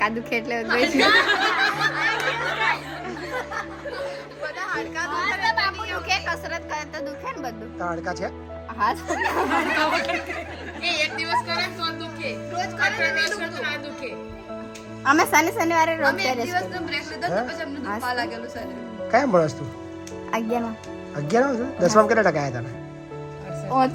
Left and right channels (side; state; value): both; identical; correlation 1.00